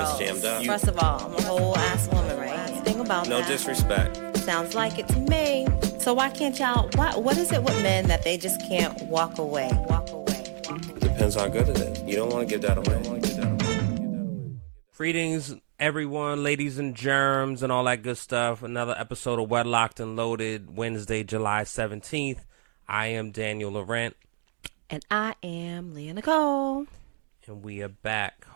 jammed up. First of all, I'm a whole ass woman, right? Think about no that. No disrespect. Sounds like it to me. So why can't y'all, what is it with men that they just can't walk away? Depends how good it is. You don't want to give that away. Greetings, everyone, ladies and germs and all that good stuff. Another episode of Wedlocked and Loaded, Wednesday, July 17th. I am Daniel Laurent. And I am Leah Nicole. And we are back.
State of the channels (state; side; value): silent; left; 56 dB below the other